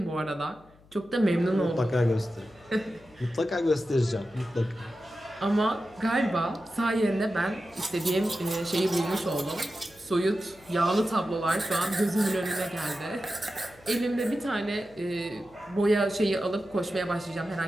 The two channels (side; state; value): left; noise; hum, 27 dB below the sound